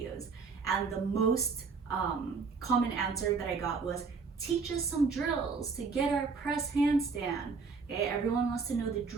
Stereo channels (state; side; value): quieter; left; 5.0 dB